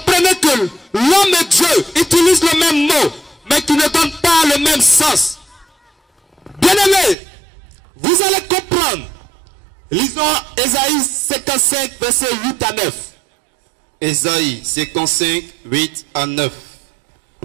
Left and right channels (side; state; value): left; drops out; at 7.2 s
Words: que l'homme et Dieu utilisent le même mot, mais qui ne donnent pas le même sens. Bien-aimés, vous allez comprendre. Lisons Ésaïe 55, versets 8 à 9. Ésaïe 55, 8 à 9.